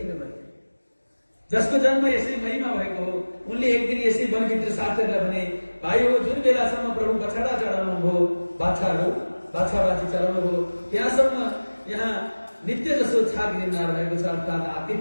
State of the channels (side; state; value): both; inverted; correlation -1.00